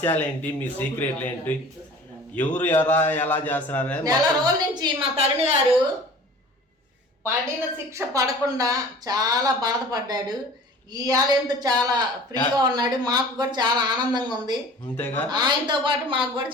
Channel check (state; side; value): normal; both; correlation 0.44